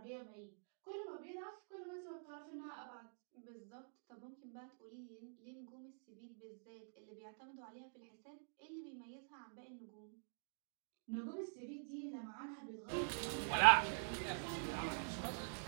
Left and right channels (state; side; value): silent; left; digital silence